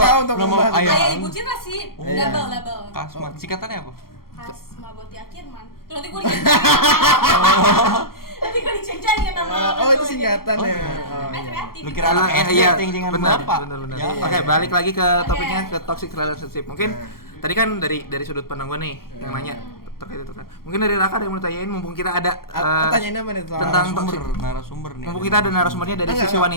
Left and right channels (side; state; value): right; late; 0.93 ms